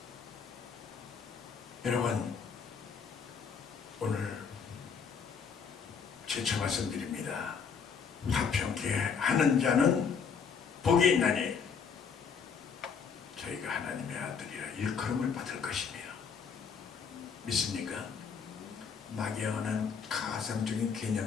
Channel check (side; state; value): right; quieter; 6.2 dB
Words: 여러분 오늘 재차 말씀드립니다. 화평케 하는 자는 복이 있나니 저희가 하나님의 아들이라 일컬음을 받을 것이며. 믿습니까? 막연한 가상적인